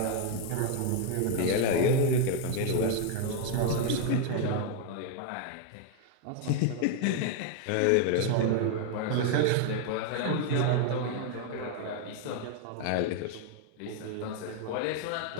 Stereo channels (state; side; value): different; both; correlation 0.01